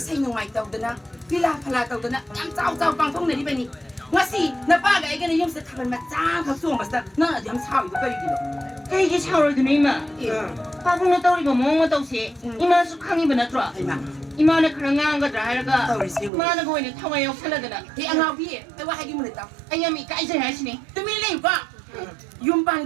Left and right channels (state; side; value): drops out; left; at 16.3 s